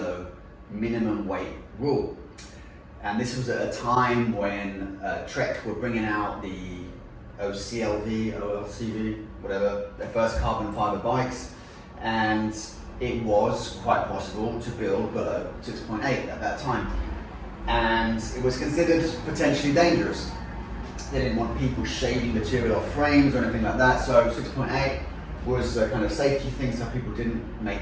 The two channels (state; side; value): identical; both; correlation 1.00